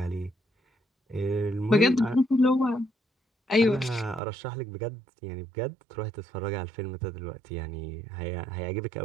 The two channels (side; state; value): left; drops out; at 4.2 s